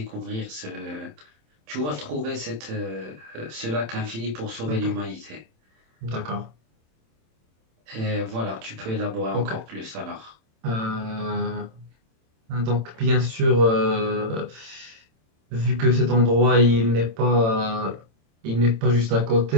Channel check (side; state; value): left; late; 27 ms